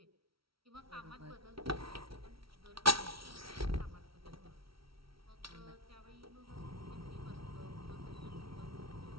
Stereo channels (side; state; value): left; late; 0.75 ms